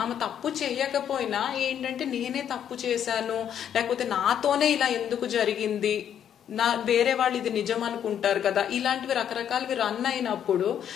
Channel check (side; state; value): right; quieter; 9.3 dB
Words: ఆమె తప్పు చేయకపోయినా ఏంటంటే నేనే తప్పు చేశాను, లేకపోతే నాతోనే ఇలా ఎందుకు జరిగింది, వేరే వాళ్ళు ఇది నిజం అనుకుంటారు కదా, ఇలాంటివి రకరకాలవి రన్ అయినప్పుడు